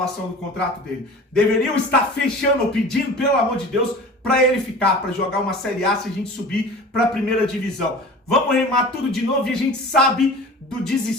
do contrato dele. Deveriam estar fechando ou pedindo, pelo amor de Deus, para ele ficar, para jogar uma Série A se a gente subir para a primeira divisão. Vamos remar tudo de novo, e a gente sabe do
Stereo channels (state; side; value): normal; both; correlation 0.39